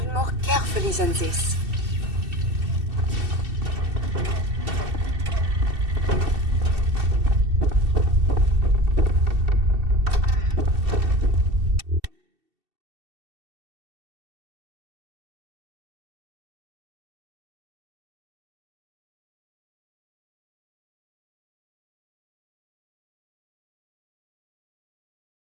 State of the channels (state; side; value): late; left; 2.7 ms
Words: more carefully than this.